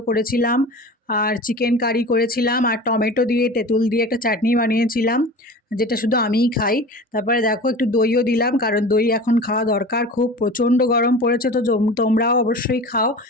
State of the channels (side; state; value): both; normal; correlation 0.36